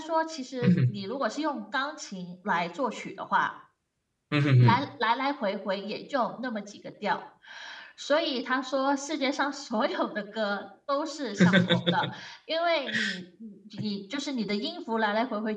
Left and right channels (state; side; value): identical; both; correlation 1.00